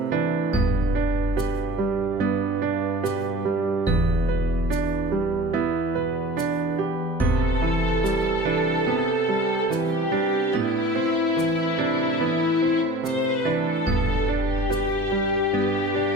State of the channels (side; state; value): both; normal; correlation 0.41